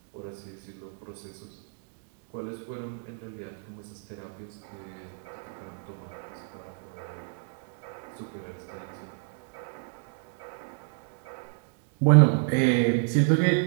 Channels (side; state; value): left; silent; 58 dB below the other